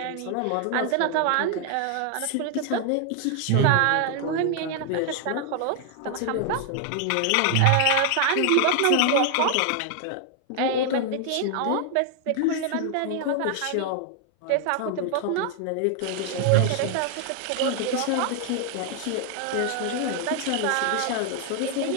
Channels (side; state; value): both; different; correlation 0.00